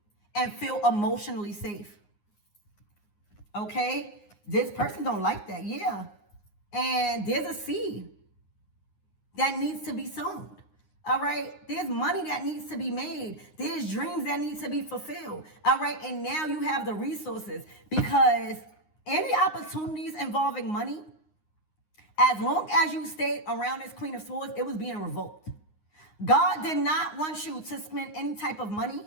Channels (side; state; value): right; late; 9.6 ms